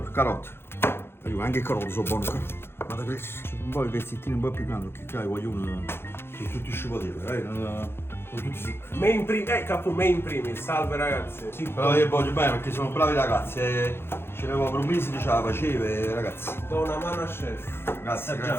carote. Anche carote sono buone. Guarda che un po' i pezzettini un po' più grandi, che voglio uno. Sono tutti sciupateli, sono tutti secchi. Capo me in primis, salve ragazzi. Sì, però io voglio bene perché sono bravi ragazzi. Ce l'avevo per un mese che ce la faceva, ragazzi. Do una mano a chef. Grazie,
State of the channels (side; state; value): right; late; 0.11 ms